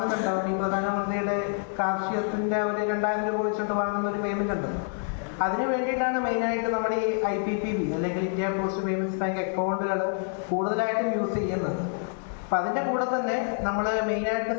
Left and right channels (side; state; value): right; silent; 59 dB below the other